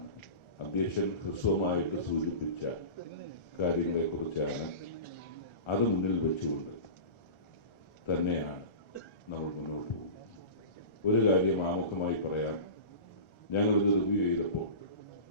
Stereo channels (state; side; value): late; right; 1.4 ms